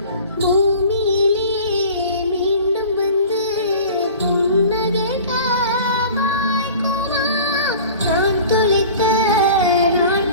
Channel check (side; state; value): both; inverted; correlation -0.42